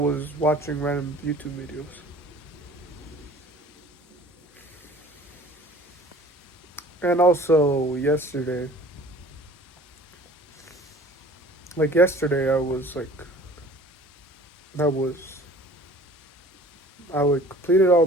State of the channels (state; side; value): normal; both; correlation 0.48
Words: watching random YouTube videos. And also yesterday, I was I would completed all